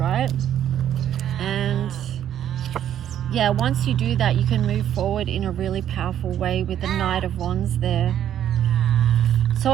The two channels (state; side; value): quieter; left; 10.5 dB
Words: And yeah, once you do that, you can move forward in a really powerful way with the Knight of Wands there. So